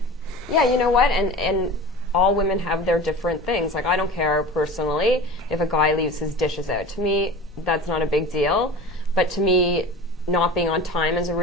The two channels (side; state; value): both; normal; correlation 0.35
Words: Yeah, you know what? And all women have their different things. Like, I don't care personally if a guy leaves his dishes out. To me, that's not a big deal. But to me, not being on time is a